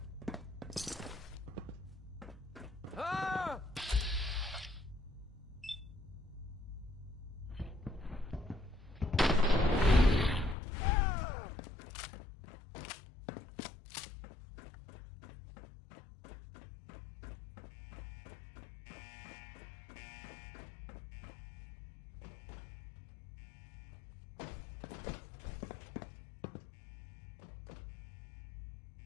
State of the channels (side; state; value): right; drops out; at 10.6 s